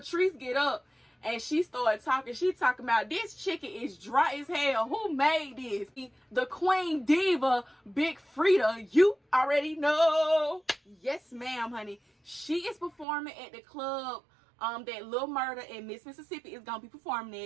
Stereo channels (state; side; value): drops out; left; at 13.1 s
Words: get up and she started talking. She talking about, this chicken is dry as hell. Who made this? The Queen Diva, Big Frida. You already know. Yes, ma'am, honey. She is performing at the club that Lil Murda and Miss Mississippi is gonna be performing